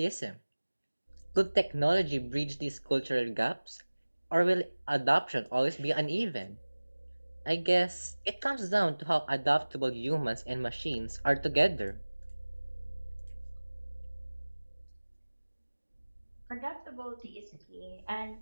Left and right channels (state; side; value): inverted; both; correlation -1.00